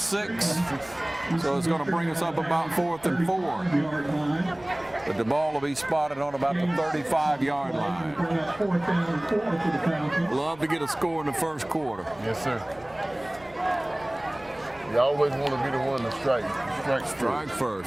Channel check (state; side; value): noise; right; rumble, 25 dB below the sound